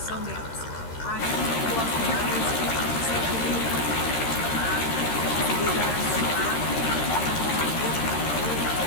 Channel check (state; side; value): late; right; 13 ms